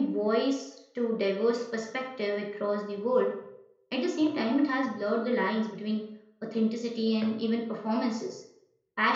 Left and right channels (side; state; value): both; identical; correlation 1.00